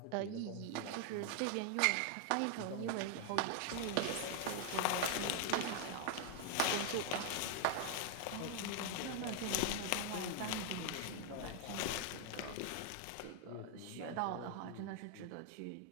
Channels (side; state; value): both; different; correlation 0.00